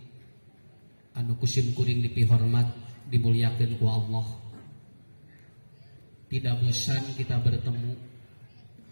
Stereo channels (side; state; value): both; inverted; correlation -1.00